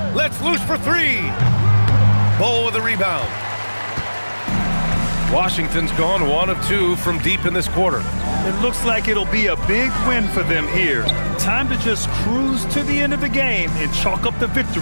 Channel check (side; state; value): both; inverted; correlation -1.00